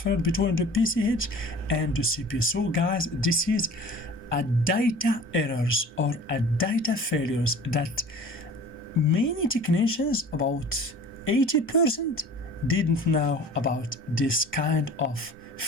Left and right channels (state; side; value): normal; both; correlation 0.43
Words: between the PCH and the CPU. So guys, this is a data errors or a data failures that many technicians, about 80%, didn't know about this kind of